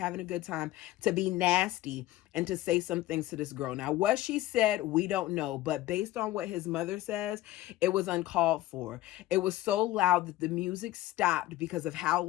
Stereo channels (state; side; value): quieter; right; 15.9 dB